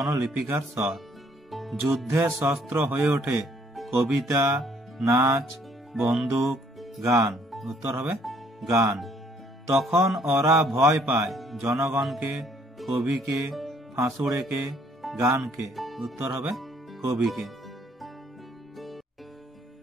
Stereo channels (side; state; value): both; normal; correlation 0.64